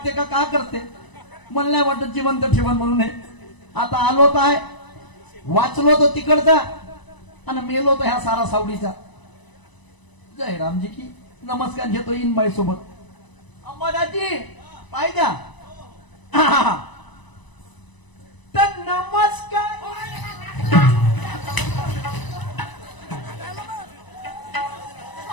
का करते मला नाही वाटत जिवंत ठेवण म्हणून हे. आता आलो तर आहे, वाचलो तो तिकडचा आणि मेलो तो ह्या सारा सावडीचा. जय रामजी की. नमस्कार घेतो इनबाई सोबत. अंबादाजी पाय द्या. तर नमस्कार.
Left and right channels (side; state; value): right; late; 1.0 ms